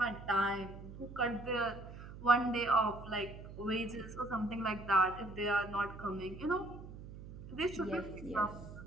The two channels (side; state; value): right; noise; hum, 13 dB below the sound